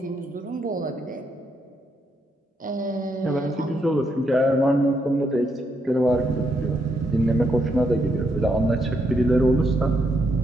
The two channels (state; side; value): normal; both; correlation 0.77